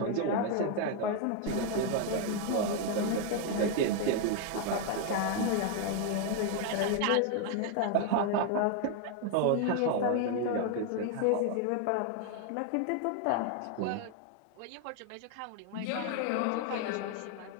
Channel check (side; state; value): both; different; correlation 0.01